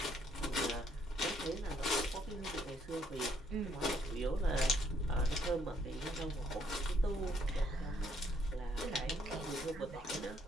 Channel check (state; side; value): normal; both; correlation 0.69